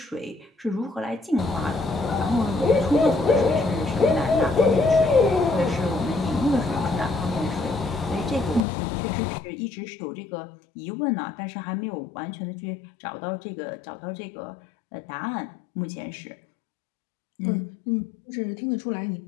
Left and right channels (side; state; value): right; drops out; at 8.6 s